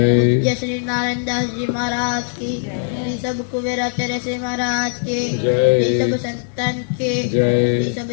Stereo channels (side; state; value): right; silent; digital silence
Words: श्री नारायण दास जी महाराज की जय। सब कुबेराचार्य श्री महाराज के जय। सब संतन के जय। सब